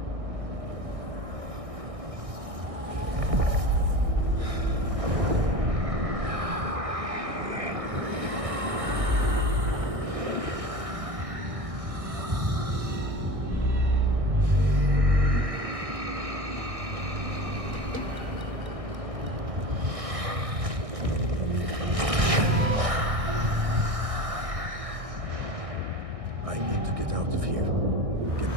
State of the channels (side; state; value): left; late; 1.6 ms